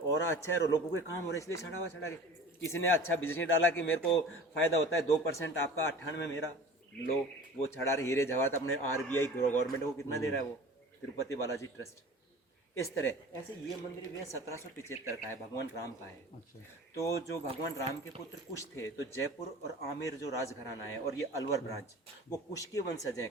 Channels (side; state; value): both; normal; correlation 0.40